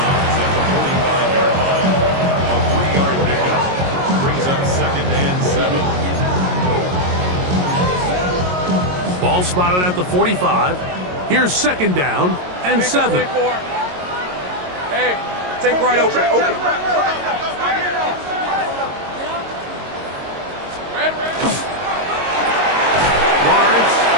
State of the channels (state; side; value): late; left; 22 ms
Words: the 45-yard line. A 3-yard pickup. Brings up 2nd and 7. Ball spotted at the 45. Here's 2nd down and 7. 24. Hey, take right open. Lawrence